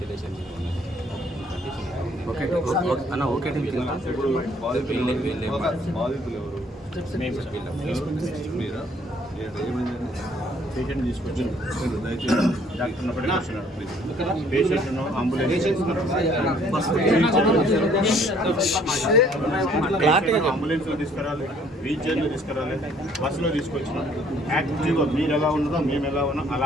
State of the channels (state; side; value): normal; both; correlation 0.61